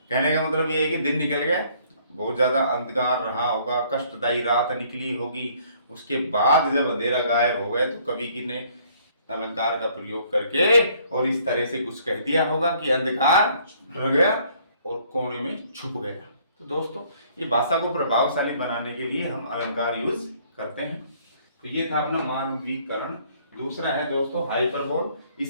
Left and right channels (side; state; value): both; inverted; correlation -0.62